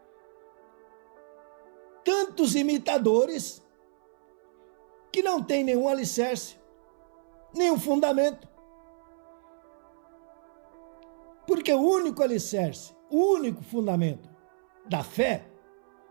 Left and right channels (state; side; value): silent; left; 58 dB below the other